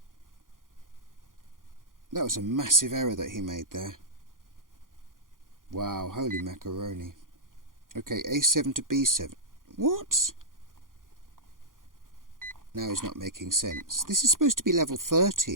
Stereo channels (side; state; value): left; late; 0.90 ms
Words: That was a massive error that he made there. Wow, holy macaroni. Okay, a7 to b7. What? Now he's not making sense. This is supposed to be level